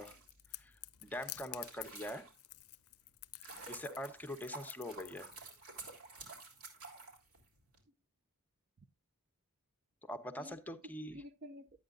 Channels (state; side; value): normal; both; correlation 0.44